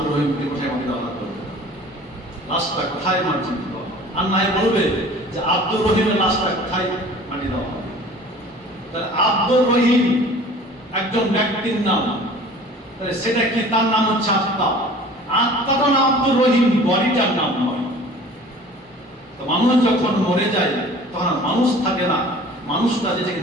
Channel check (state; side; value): normal; both; correlation 0.46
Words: রহিমকে কোথায় মাটি দেওয়া হবে, লাশটা কোথায় মাটি দেওয়া হবে, আর নাই বলবে যে আব্দুর রহিমের লাশটা কোথায় মাটি দেওয়া হবে। তাহলে আব্দুর রহিম একজন ব্যক্তির নাম, তাহলে সেটা কি? তার নাম হচ্ছে আত্মা। আত্মাটা নাম আব্দুর রহিম, বডিটার নাম নয়। তো মানুষ যখন মরে যায়, তখন মানুষ থাকে না, মানুষটা